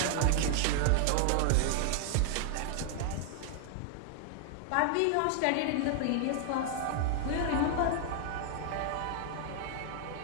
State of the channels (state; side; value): different; both; correlation 0.00